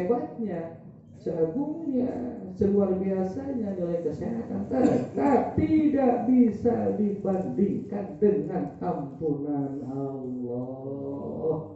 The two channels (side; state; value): both; identical; correlation 1.00